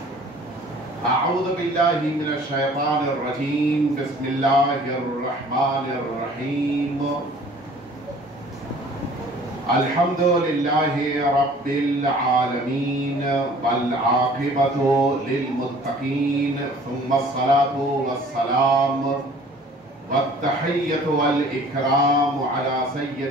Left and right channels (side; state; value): both; normal; correlation 0.50